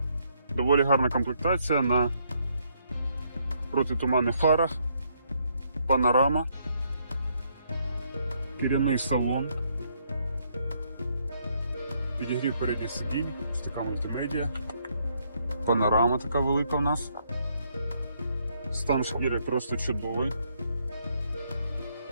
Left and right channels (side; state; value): both; inverted; correlation -0.72